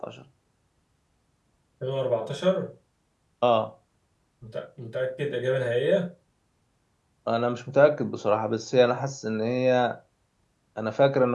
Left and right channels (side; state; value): both; identical; correlation 1.00